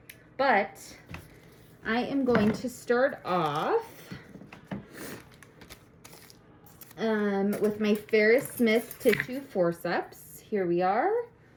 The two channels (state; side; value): identical; both; correlation 1.00